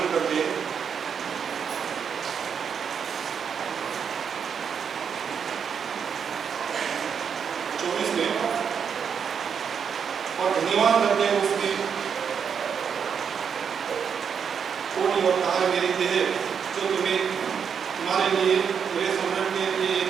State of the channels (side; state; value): left; quieter; 7.0 dB